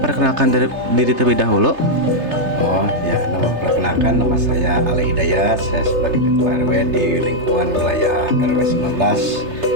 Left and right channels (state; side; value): late; left; 3.3 ms